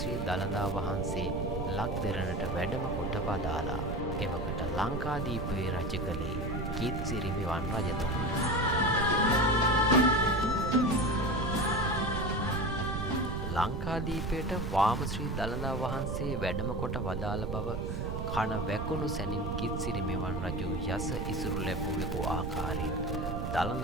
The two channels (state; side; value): noise; right; rumble, 3 dB below the sound